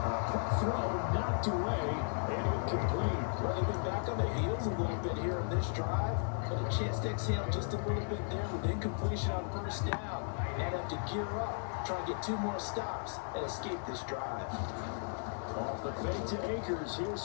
Quick throw knocked away and incomplete. Well, they've been back on their heels a little bit here in this drive, but a chance to exhale just a little bit there with incompletion on first down. Now they have to gear up, try and get 2 more stops and escape this drive. Off the fake to Akers, here's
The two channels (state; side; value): silent; right; 54 dB below the other